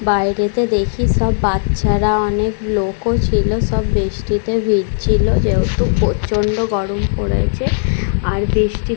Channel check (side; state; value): right; silent; 69 dB below the other